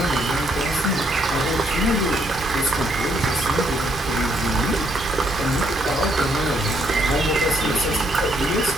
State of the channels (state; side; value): normal; both; correlation 0.71